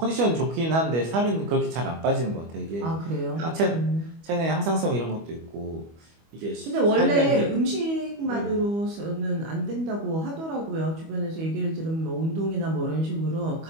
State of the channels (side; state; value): left; late; 25 ms